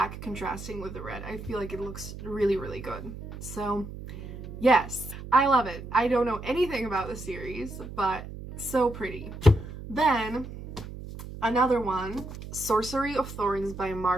contrasting with the red. I feel like it looks really, really good. So yes, I love it. I don't know anything about the series, but so pretty. Then another one, Sorcery of Thorns by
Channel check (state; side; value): noise; right; hum, 11 dB below the sound